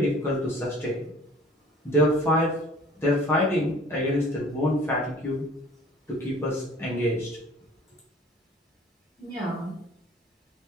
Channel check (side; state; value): both; normal; correlation 0.49